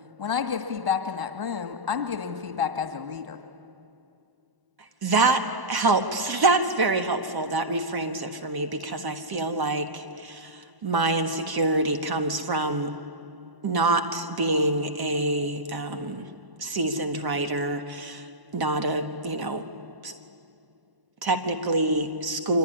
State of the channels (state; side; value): late; left; 1.0 ms